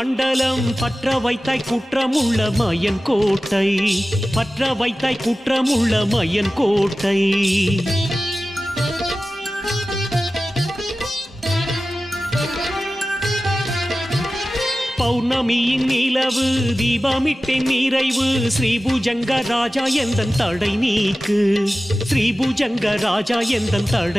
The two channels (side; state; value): both; normal; correlation 0.95